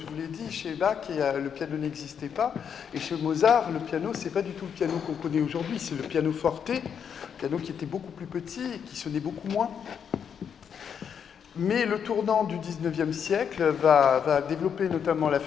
vous l'ai dit, chez Bach, le piano n'existait pas, et chez Mozart, le piano, c'est pas du tout le piano qu'on connaît aujourd'hui, c'est le piano forte, piano qui était beaucoup plus petit et qui sonnait beaucoup moins. Mais le tournant du 19e siècle va développer notamment la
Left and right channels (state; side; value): quieter; right; 7.6 dB